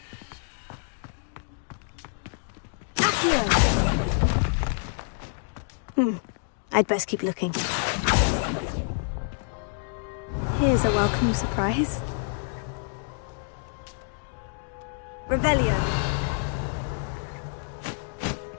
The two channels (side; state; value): right; silent; digital silence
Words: I'd best keep looking. Here's a welcome surprise. Revelio.